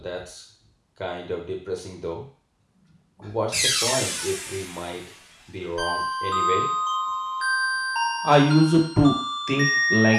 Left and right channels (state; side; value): identical; both; correlation 1.00